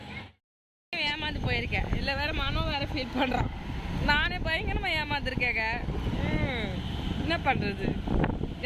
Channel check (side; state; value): both; identical; correlation 1.00